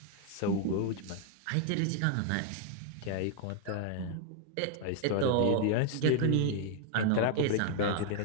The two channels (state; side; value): different; both; correlation 0.00